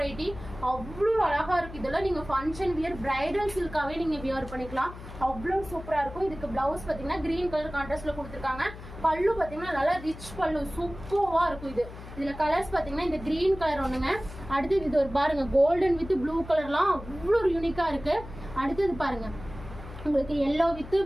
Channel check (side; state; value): left; noise; hum, 14 dB below the sound